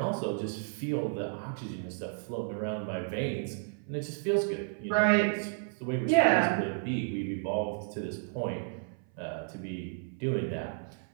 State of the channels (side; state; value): left; silent; 56 dB below the other